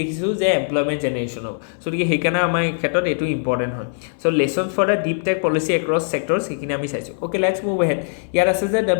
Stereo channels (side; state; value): right; silent; digital silence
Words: যে এমপ্লয়মেণ্ট জেনেৰেশ্যন হ'ব। গতিকে সেইকাৰণে আমাৰ এই ক্ষেত্ৰত এইটো ইম্পৰ্টেণ্ট হয়। Lesson for the deep tech policy across sector, সেইখিনি আমি চাইছোঁ। Okay, let's move ahead. ইয়াত আছে যে the